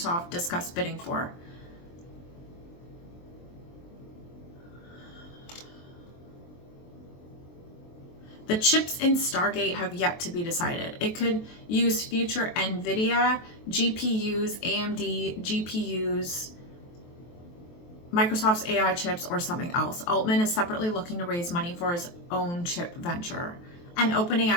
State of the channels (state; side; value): late; right; 23 ms